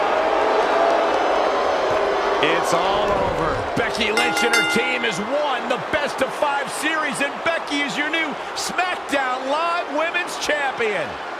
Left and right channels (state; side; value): identical; both; correlation 1.00